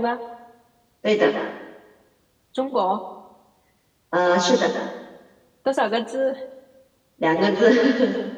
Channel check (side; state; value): both; identical; correlation 1.00